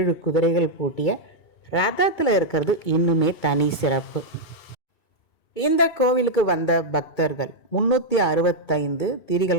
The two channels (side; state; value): right; late; 2.3 ms